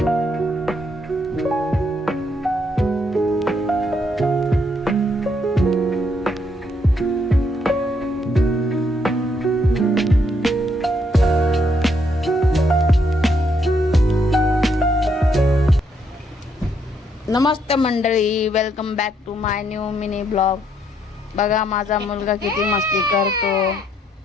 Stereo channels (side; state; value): both; normal; correlation 0.73